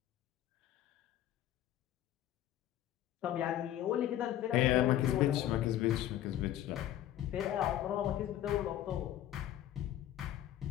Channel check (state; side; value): quieter; right; 12.4 dB